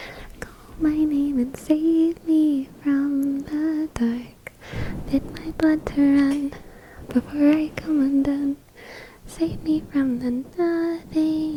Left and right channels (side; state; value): both; identical; correlation 1.00